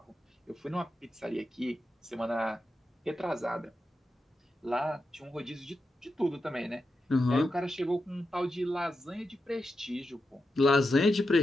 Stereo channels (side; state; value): both; normal; correlation 0.88